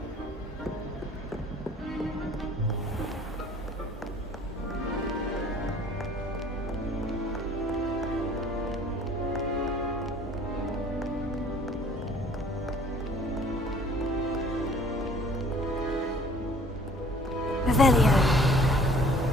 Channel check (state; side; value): normal; both; correlation 0.53